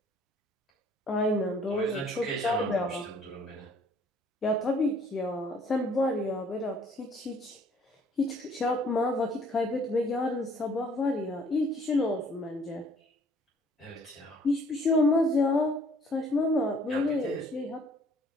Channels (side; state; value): both; normal; correlation 0.59